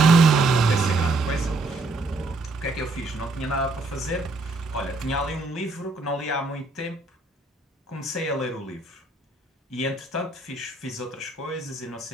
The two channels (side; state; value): left; quieter; 3.1 dB